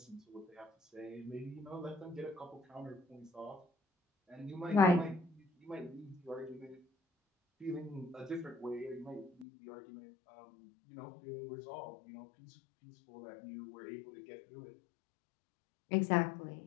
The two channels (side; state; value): right; drops out; at 9.5 s